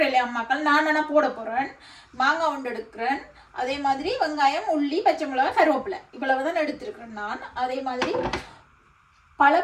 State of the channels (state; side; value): identical; both; correlation 1.00